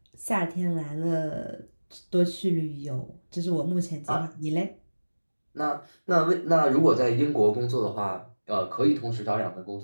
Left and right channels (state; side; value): inverted; both; correlation -1.00